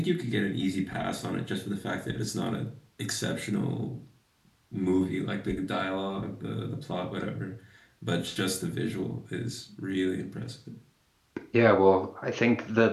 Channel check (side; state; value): both; identical; correlation 1.00